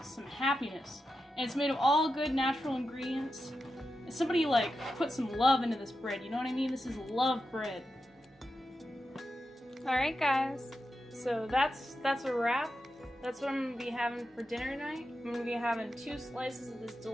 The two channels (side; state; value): both; normal; correlation 0.89